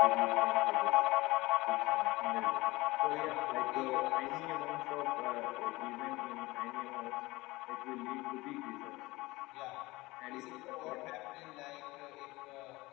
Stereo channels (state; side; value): quieter; right; 20.9 dB